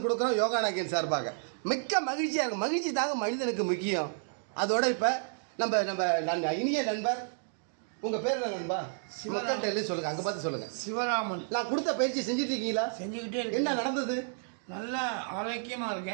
கொடுக்குறோம் யோகா நாயகன் சார்பாக. மிக்க மகிழ்ச்சியாக இருக்கும். மகிழ்ச்சி தாங்க மனிதனுக்கு முக்கியம். அதோட இப்போ நம்ம இனிய நண்பர், உங்கள் பேர் என்ன நண்பா? மக்கள்கிட்ட சொல்லுங்கள், அங்கே பார்த்து சொல்லுங்கள். சிவராமன். நான் கொடுத்த பயிற்சி செஞ்சுட்டு இருக்கீங்களா? செஞ்சுக்கிட்டே இருக்கேன். என்ன நடந்தது? நல்லா ஆரோக்கியமாக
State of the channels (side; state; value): left; silent; digital silence